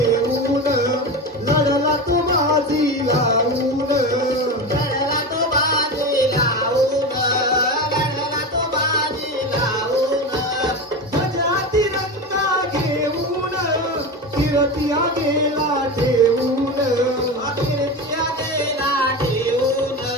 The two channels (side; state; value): both; normal; correlation 0.23